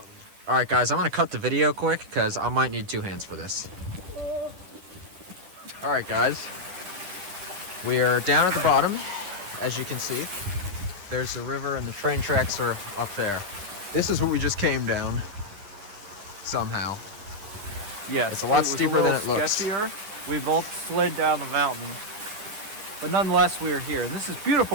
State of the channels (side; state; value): left; late; 11 ms